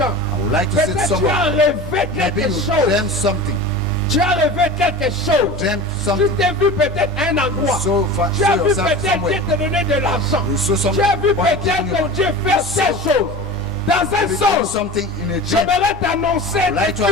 I would like to say to peut-être tu as someone, rêvé maybe quelque you chose. dreamt something. Tu as rêvé quelque chose. Dreamt Tu something. t'es vu peut-être à un endroit. So Tu as vu yourself peut-être somewhere. Dieu te donner de l'argent. You saw Tu as vu somebody peut-être giving you que Dieu fait So- telle chose. Dans un You saw sens, something in a dream. j'aimerais t'annoncer I'd like que to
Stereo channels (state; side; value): normal; both; correlation 0.33